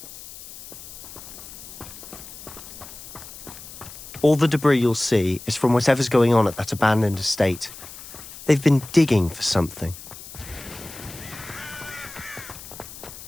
All the debris you'll see is from whatever's going on at that abandoned estate. They've been digging for something.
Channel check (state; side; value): noise; left; hiss, 15 dB below the sound